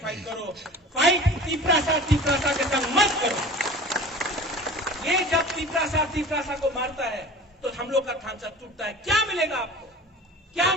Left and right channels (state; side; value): normal; both; correlation 0.40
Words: करो। फाइट त्रिपुरासा के संग मत करो। ये जब त्रिपुरासा को मारता है, तो हम लोग का ढांचा टूटता है। क्या मिलेगा आपको, क्या